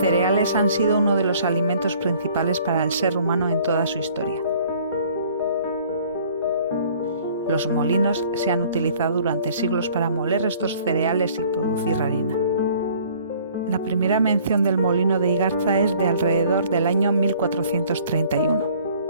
han sido uno de los alimentos principales para el ser humano en toda su historia. Los molinos se han utilizado durante siglos para moler estos cereales y producir harina. La primera mención del molino de Igarza es de alrededor del año 1431.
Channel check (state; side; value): inverted; both; correlation -0.54